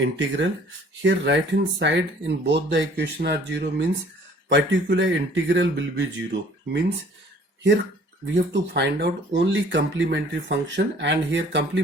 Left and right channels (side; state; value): both; normal; correlation 0.54